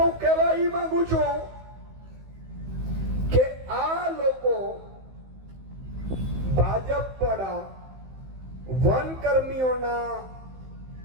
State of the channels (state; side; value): late; left; 15 ms